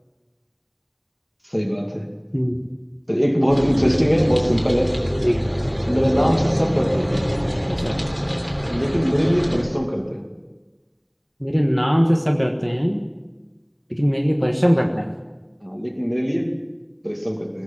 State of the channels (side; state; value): both; identical; correlation 1.00